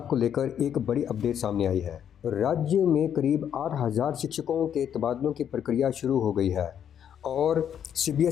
को लेकर एक बड़ी अपडेट सामने आई है। राज्य में करीब 8,000 शिक्षकों के तबादलों की प्रक्रिया शुरू हो गई है और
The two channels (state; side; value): quieter; right; 9.1 dB